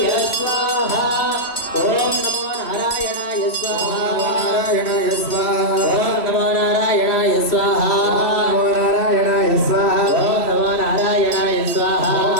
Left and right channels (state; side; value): late; right; 3.1 ms